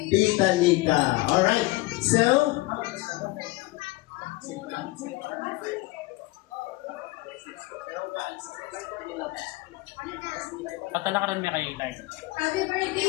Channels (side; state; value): right; quieter; 21.4 dB